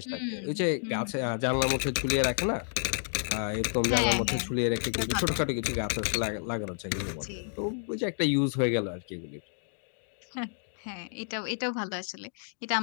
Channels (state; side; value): silent; right; digital silence